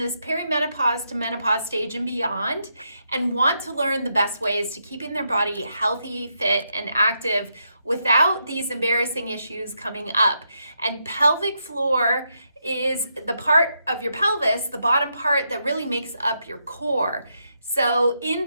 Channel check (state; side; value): inverted; both; correlation -0.81